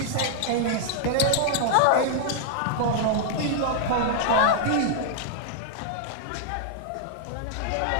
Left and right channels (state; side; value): different; both; correlation -0.01